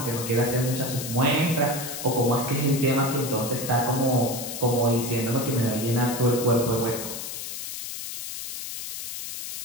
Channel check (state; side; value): noise; left; hiss, 7 dB below the sound